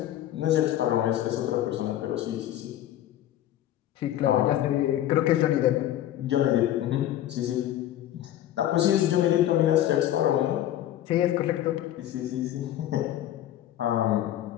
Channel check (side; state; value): right; quieter; 12.6 dB